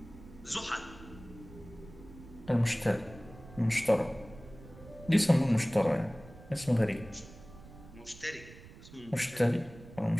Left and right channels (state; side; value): noise; right; rumble, 18 dB below the sound